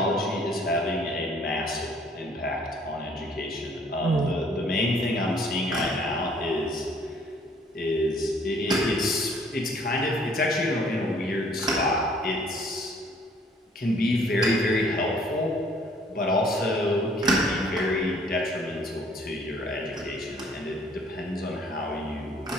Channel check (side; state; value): both; normal; correlation 0.59